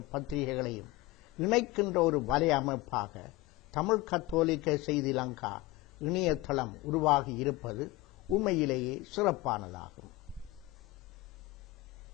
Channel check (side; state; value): right; quieter; 19.2 dB